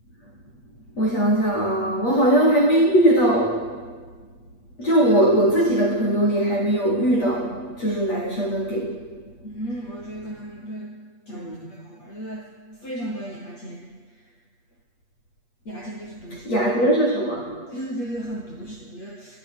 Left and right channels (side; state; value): right; late; 8.4 ms